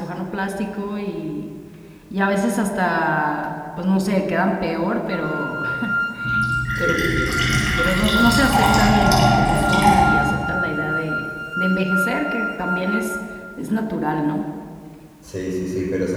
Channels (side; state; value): both; identical; correlation 1.00